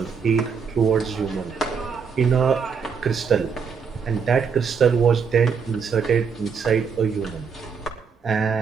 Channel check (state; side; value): quieter; left; 6.0 dB